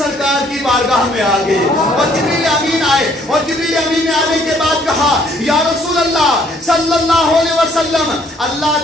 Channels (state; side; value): normal; both; correlation 0.63